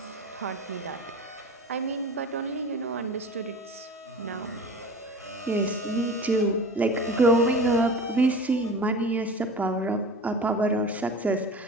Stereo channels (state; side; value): normal; both; correlation 0.36